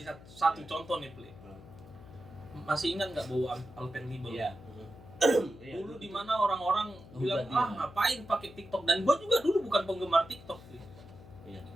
satu contoh nih, Pli. Masih ingat nggak bau Alpenlibe? Iya. Dulu di mana orang-orang bilang, jadi, ngapain pakai TikTok, dan gua juga dulu bukan penggemar TikTok. Iya.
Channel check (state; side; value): noise; left; hum, 19 dB below the sound